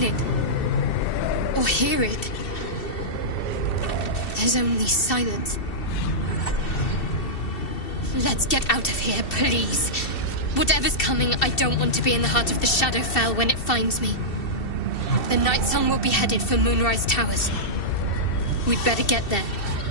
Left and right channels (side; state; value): right; late; 2.7 ms